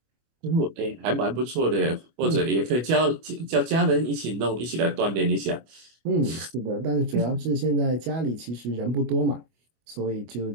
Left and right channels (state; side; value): late; left; 25 ms